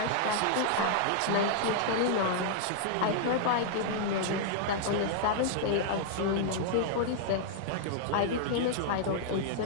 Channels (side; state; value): both; different; correlation -0.01